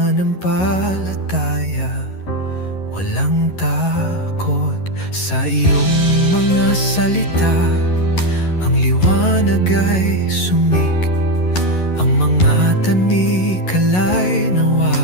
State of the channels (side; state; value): right; late; 11 ms